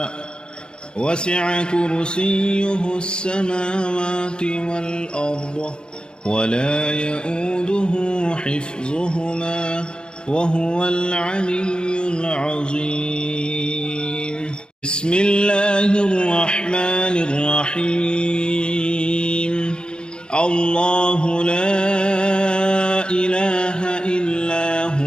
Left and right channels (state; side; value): late; right; 0.050 ms